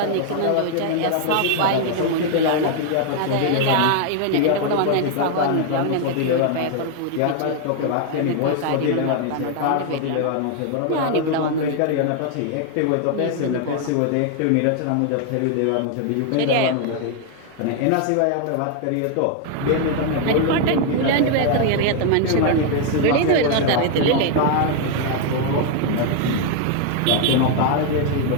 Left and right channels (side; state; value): both; different; correlation 0.00